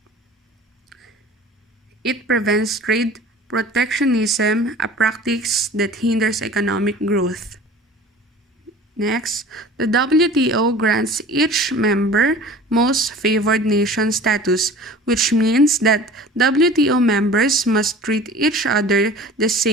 It prevents trade protectionism, a practice that hinders economic growth. Next, the WTO grants each member most favored nation status, which means that WTO members must treat each other the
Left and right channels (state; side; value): normal; both; correlation 0.43